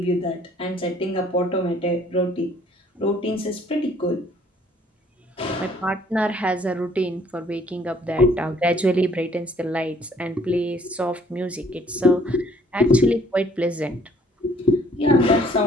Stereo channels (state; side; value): normal; both; correlation 0.60